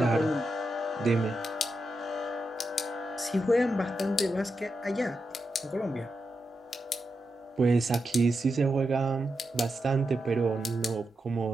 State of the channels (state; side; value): normal; both; correlation 0.87